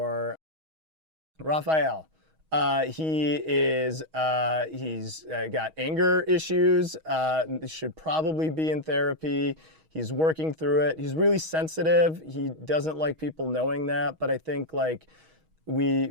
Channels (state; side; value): late; left; 6.3 ms